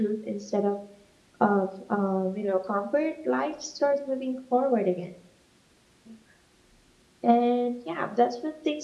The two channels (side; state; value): both; identical; correlation 1.00